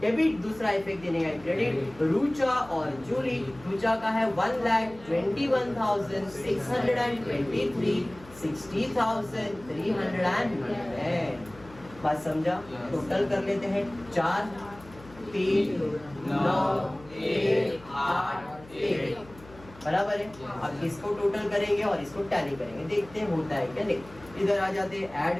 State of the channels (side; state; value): left; noise; hum, 21 dB below the sound